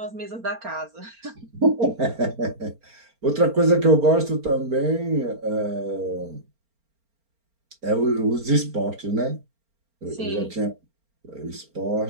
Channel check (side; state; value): left; late; 4.4 ms